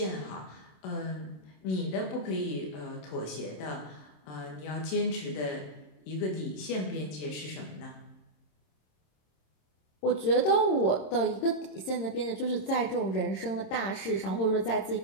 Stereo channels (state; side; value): late; right; 26 ms